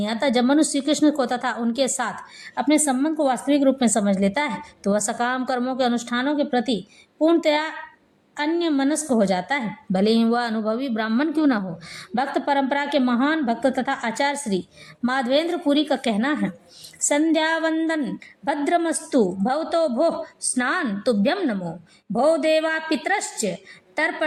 आता। जब मनुष्य श्री कृष्ण को तथा उनके साथ अपने संबंध को वास्तविक रूप में समझ लेता है, तो वह सकाम कर्मों के अनुष्ठानों के प्रति पूर्णतया अन्य मनस्क हो जाता है, भले ही वह अनुभवी ब्राह्मण क्यों न हो। भक्त परंपरा के महान भक्त तथा आचार्य श्री माधवेंद्र पुरी का कहना है, संध्या वंदन भद्रमस्तु भवतो भोः स्नान तुभ्यम नमो भो देवा पितरश्च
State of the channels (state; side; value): identical; both; correlation 1.00